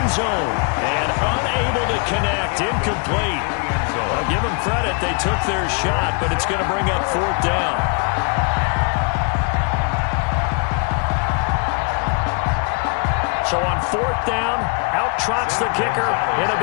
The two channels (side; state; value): right; quieter; 35.1 dB